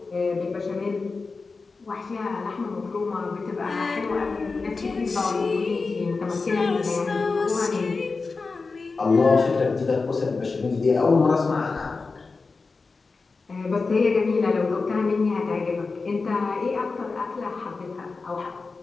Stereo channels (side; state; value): right; quieter; 4.2 dB